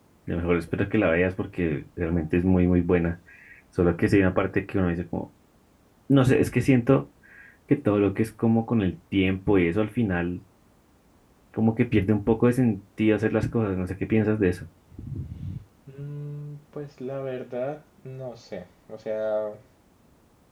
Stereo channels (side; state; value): both; identical; correlation 1.00